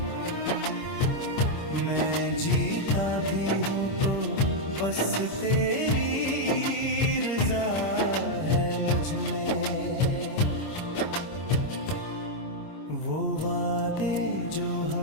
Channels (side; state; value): right; late; 26 ms